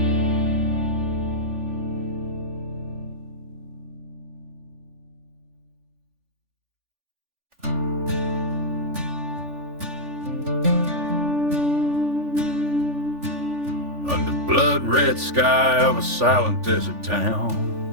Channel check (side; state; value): left; late; 3.4 ms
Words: Blood-red sky of a silent desert town,